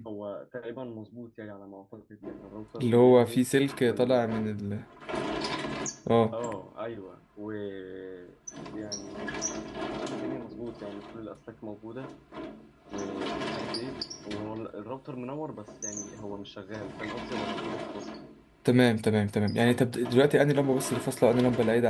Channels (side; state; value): both; identical; correlation 1.00